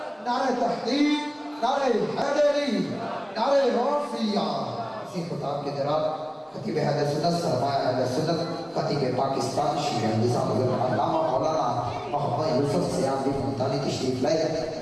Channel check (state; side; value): identical; both; correlation 1.00